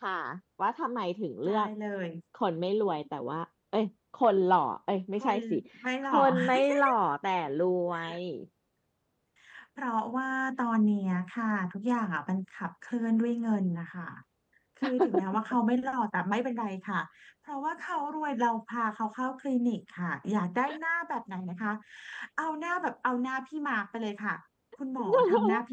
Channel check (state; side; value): identical; both; correlation 1.00